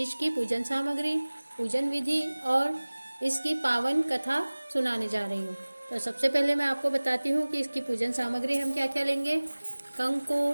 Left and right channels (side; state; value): both; inverted; correlation -1.00